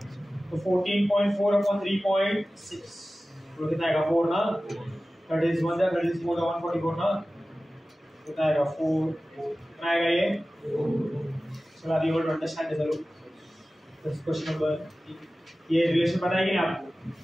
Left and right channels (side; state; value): both; normal; correlation 0.96